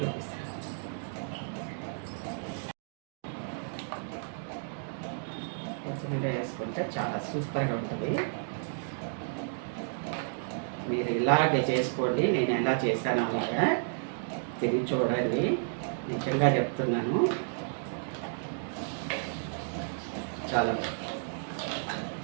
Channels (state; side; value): silent; left; digital silence